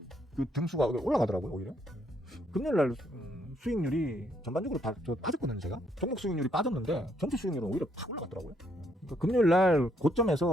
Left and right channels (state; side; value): normal; both; correlation 0.72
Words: 그 등수가 올라가더라고요. 오히려 금요일날 수익률이 전반적으로 빠졌거든요. 제가 종목 수익률이 빠졌는데 전체 수익률은 오히려 팍 올라갔더라고요. 그러니까 금요일날